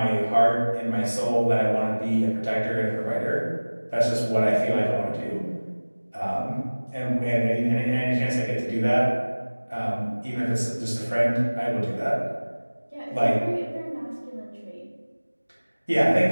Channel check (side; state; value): both; inverted; correlation -1.00